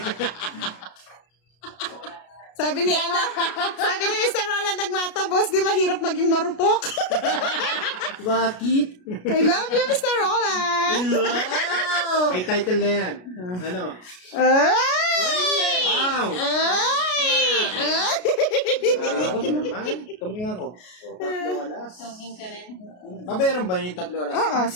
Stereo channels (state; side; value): late; right; 33 ms